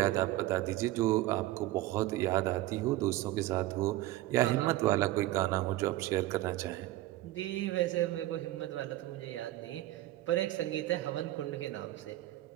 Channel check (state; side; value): quieter; left; 16.4 dB